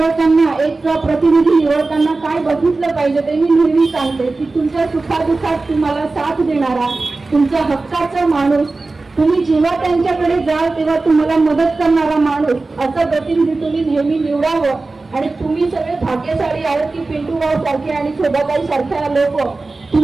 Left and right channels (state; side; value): quieter; left; 3.5 dB